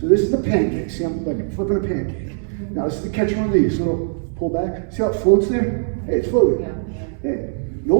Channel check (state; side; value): silent; left; digital silence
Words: this is the pancake. See, I'm like flipping a pancake. Now this is the catch and release. So it'll pull back. See how it floats there? Hey, it's floating. Hey, no